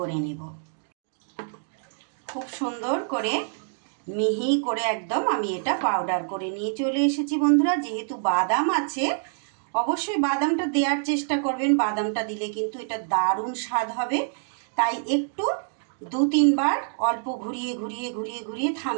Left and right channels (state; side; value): silent; left; digital silence